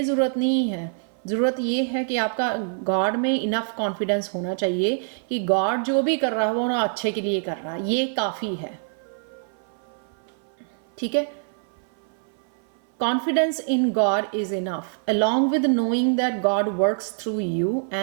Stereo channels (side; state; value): left; silent; 58 dB below the other